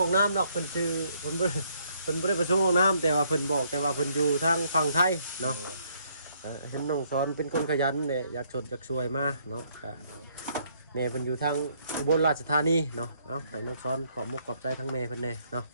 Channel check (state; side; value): inverted; both; correlation -0.69